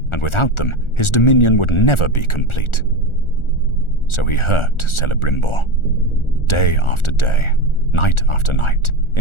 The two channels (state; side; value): late; right; 1.4 ms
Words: and without them his dominion would never be complete. So he hurt Celebrimbor, day after day, night after night,